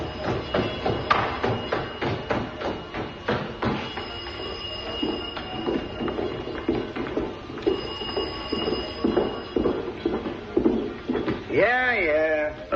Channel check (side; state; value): both; identical; correlation 1.00